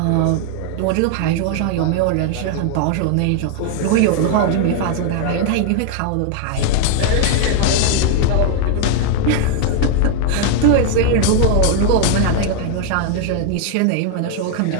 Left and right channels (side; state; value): both; different; correlation 0.00